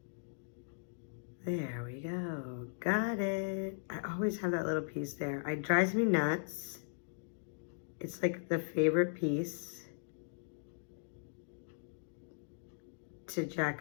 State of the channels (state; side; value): silent; right; digital silence